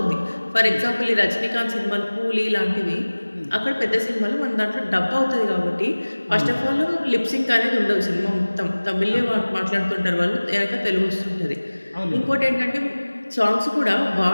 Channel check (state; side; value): inverted; both; correlation -1.00